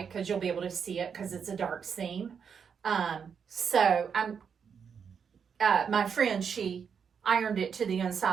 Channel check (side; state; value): left; quieter; 6.8 dB